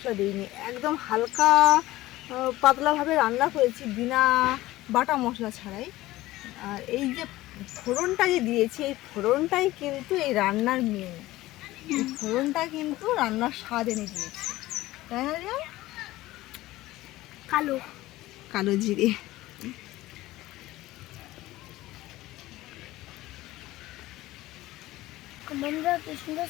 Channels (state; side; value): quieter; right; 17.2 dB